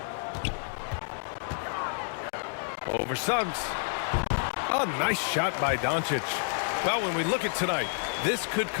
Over Suggs. A nice shot by Doncic. Well, when we look at tonight, this could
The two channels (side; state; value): right; silent; digital silence